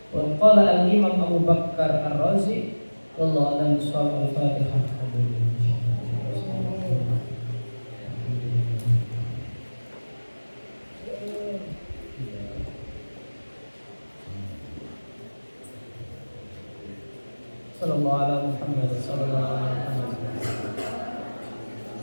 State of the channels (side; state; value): both; inverted; correlation -1.00